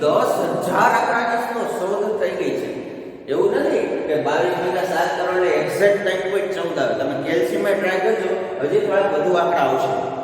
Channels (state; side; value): identical; both; correlation 1.00